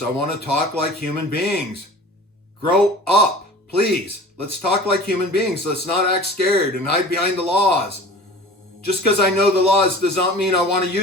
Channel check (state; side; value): normal; both; correlation 0.41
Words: I want to talk like human beings. Grow up, please. Let's talk like human beings. Let's not act scared and hide behind the laws. Just because I know the laws does not mean I want to